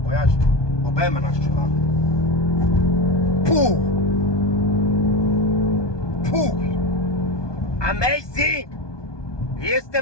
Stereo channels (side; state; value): right; late; 1.2 ms